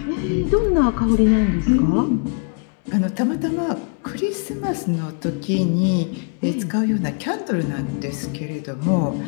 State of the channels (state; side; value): quieter; right; 38.3 dB